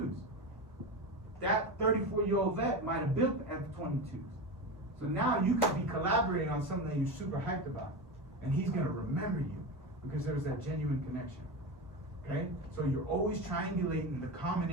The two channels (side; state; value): both; normal; correlation 0.21